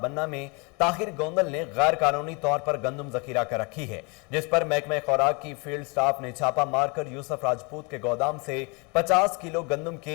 में ताहिर गोंदल ने गैर कानूनी तौर पर गंदुम जखीरा कर रखी है, जिस पर महकमे खुराक की फील्ड स्टाफ ने छापा मारकर यूसुफ राजपूत के गोदाम से 50 किलो गंदुम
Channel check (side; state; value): right; quieter; 30.2 dB